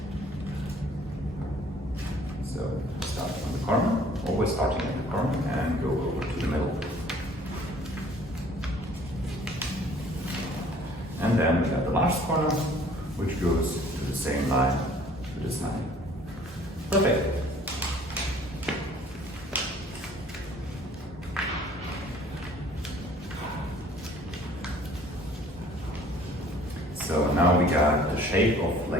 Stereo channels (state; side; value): normal; both; correlation 0.54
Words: So start on the corner, always starting at the corner and go over to the middle. And then we got the last corner, which goes to the same line, to this line. Perfect. So now we got the shape of